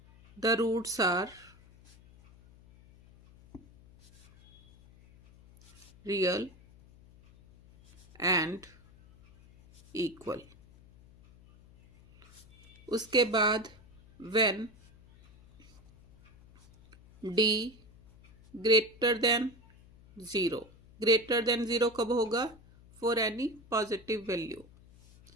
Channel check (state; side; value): noise; left; hum, 25 dB below the sound